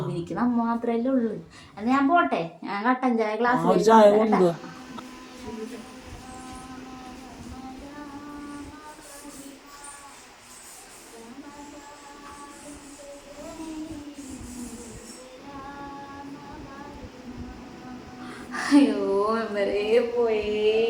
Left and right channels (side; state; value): both; identical; correlation 1.00